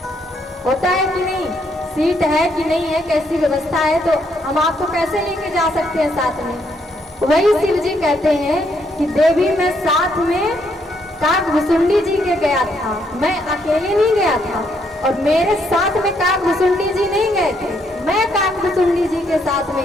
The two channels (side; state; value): both; normal; correlation 0.73